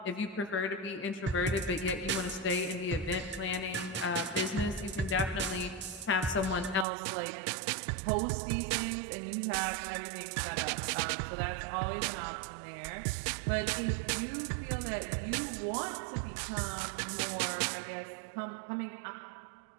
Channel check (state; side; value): drops out; left; at 6.9 s